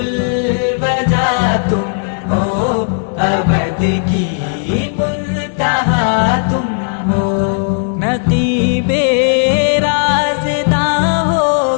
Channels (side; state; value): right; silent; digital silence